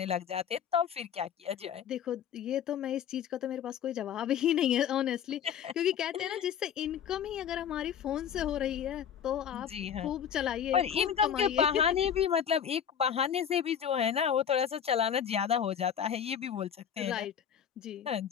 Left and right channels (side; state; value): right; quieter; 8.7 dB